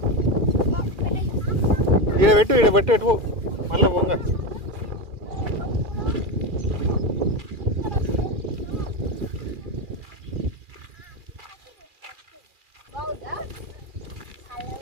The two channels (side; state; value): left; late; 2.4 ms